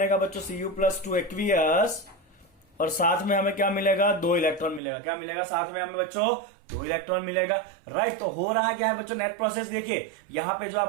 बच्चों Cu प्लस 2 एक्वियस। और साथ में हमें क्या मिलेगा, 2 इलेक्ट्रॉन मिलेगा। क्या मिलेगा साथ में हमें बच्चों, 2 इलेक्ट्रॉन मिलेगा, राइट। तो हो रहा क्या है बच्चों, नेट प्रोसेस देखिए। यहां पे जो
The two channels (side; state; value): left; drops out; at 4.8 s